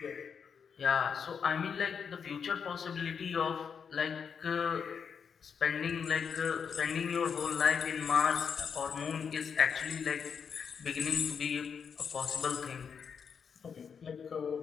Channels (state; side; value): quieter; right; 6.6 dB